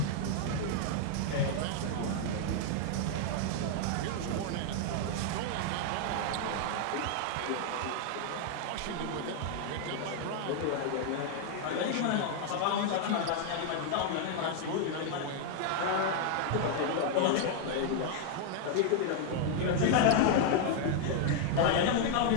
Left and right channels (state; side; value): different; both; correlation 0.00